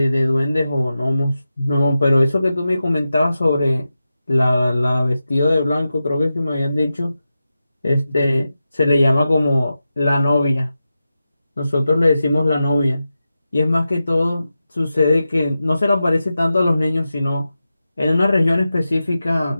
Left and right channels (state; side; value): inverted; both; correlation -0.92